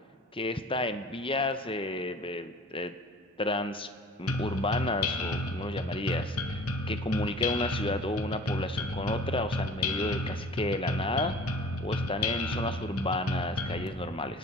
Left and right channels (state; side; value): normal; both; correlation 0.45